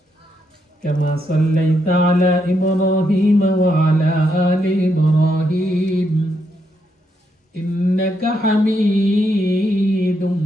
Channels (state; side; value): normal; both; correlation 0.79